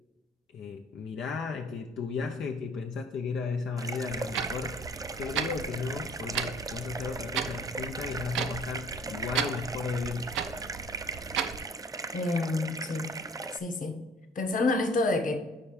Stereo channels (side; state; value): both; normal; correlation 0.52